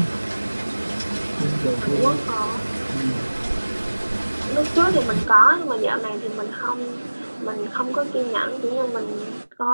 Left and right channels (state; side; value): inverted; both; correlation -1.00